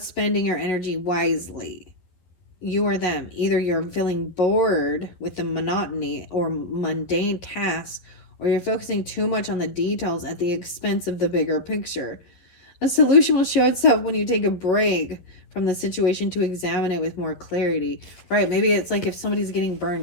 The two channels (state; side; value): late; right; 11 ms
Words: spending your energy wisely. You or them. Either you're feeling bored with the monotony or mundane tasks, or you're focusing too much on the details at the expense of the bigger picture. A solution will show itself when you take a break from the situation to examine it with more clarity. Right, maybe it's like if somebody's getting